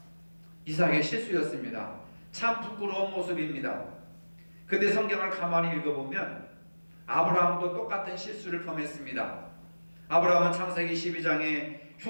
이삭의 실수였습니다. 참 부끄러운 모습입니다. 근데 성경을 가만히 읽어보면 아브라함도 똑같은 실수를 범했습니다. 아브라함은 창세기 12장에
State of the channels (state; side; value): inverted; both; correlation -1.00